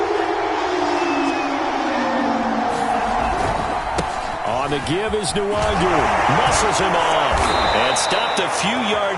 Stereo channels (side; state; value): both; identical; correlation 1.00